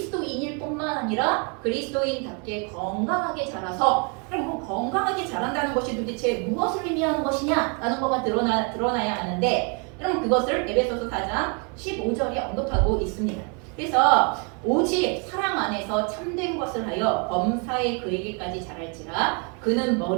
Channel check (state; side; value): quieter; left; 35.3 dB